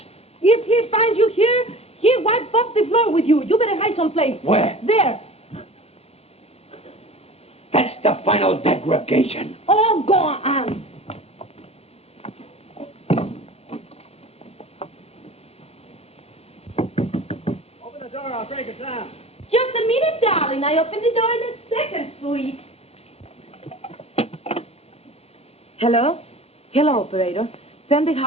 If he finds you here, he'll wipe off the floor with you. You better hide someplace. Where? There. That's the final degradation. Oh, go on. Open the door, I'll break it down. Just a minute, darling. I open the door in a second, sweet. Hello? Hello, operator. Send the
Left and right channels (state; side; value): late; right; 0.29 ms